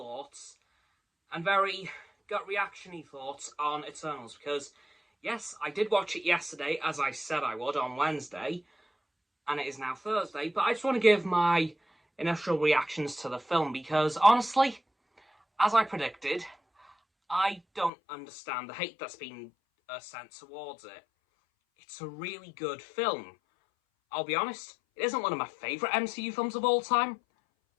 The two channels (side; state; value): right; drops out; at 17.9 s